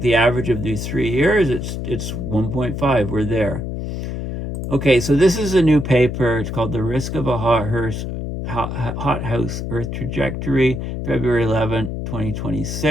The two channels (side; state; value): left; noise; hum, 5 dB below the sound